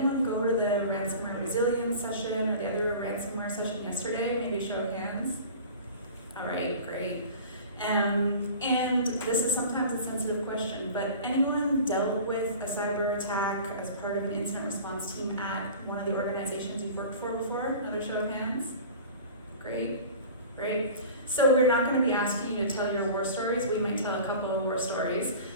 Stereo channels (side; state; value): both; inverted; correlation -0.39